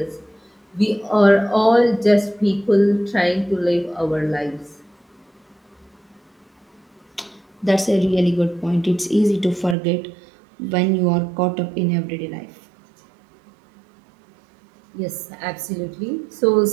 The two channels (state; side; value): drops out; left; at 9.8 s